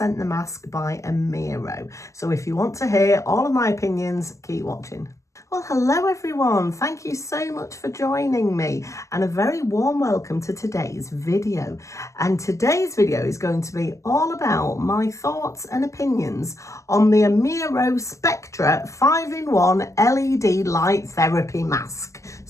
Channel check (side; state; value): right; late; 0.15 ms